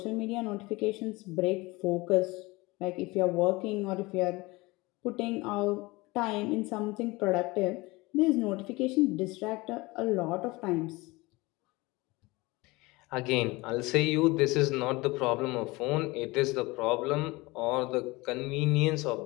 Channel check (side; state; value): right; quieter; 22.6 dB